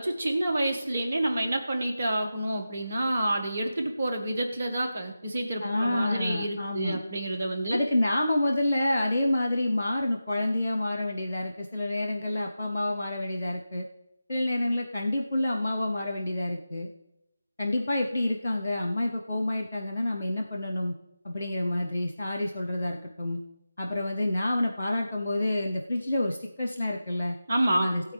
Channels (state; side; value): inverted; both; correlation -0.92